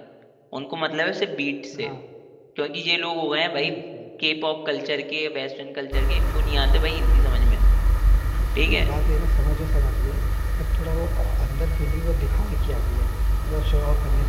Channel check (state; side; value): identical; both; correlation 1.00